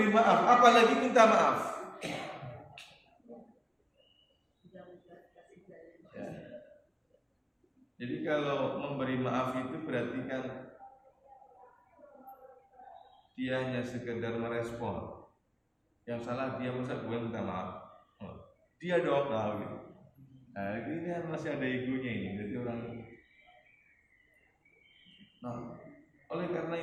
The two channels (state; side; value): identical; both; correlation 1.00